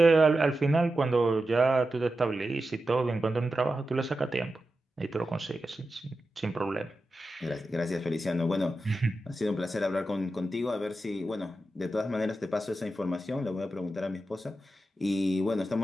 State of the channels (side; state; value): both; normal; correlation 0.91